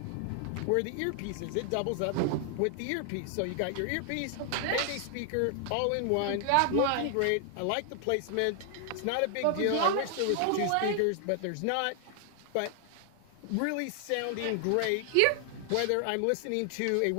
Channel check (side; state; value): both; different; correlation 0.00